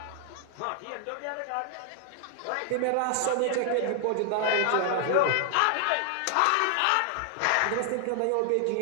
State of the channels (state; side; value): different; both; correlation 0.00